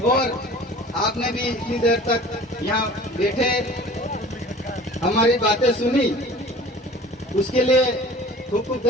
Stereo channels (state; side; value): normal; both; correlation 0.44